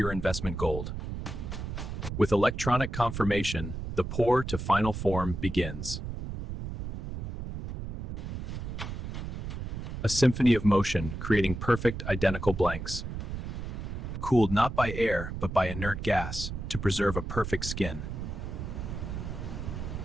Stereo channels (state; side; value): noise; right; rumble, 6 dB below the sound